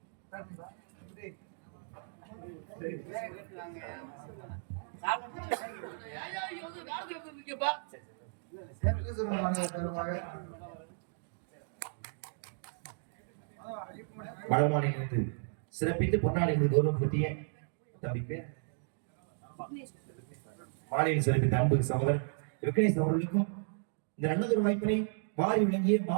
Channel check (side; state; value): left; silent; digital silence